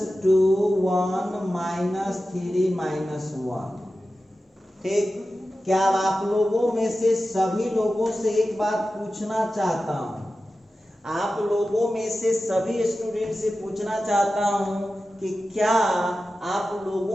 1 -3 -1। ठीक, क्या आप लोगों में से सभी लोगों से एक बात पूछना चाहता हूँ, आप लोगों में से सभी स्टूडेंट से पूछना चाहता हूँ कि क्या आप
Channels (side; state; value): both; normal; correlation 0.93